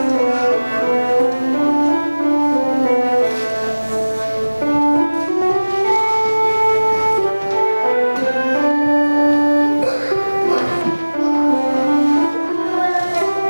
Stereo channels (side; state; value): both; inverted; correlation -1.00